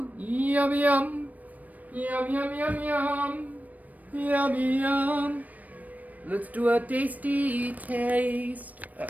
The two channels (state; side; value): late; left; 0.076 ms